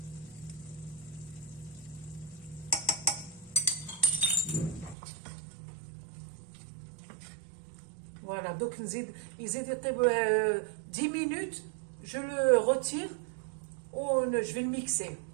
Voilà, donc il يزيد 10 minutes, je le retire, je vais le mixer.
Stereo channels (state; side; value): drops out; left; at 5.0 s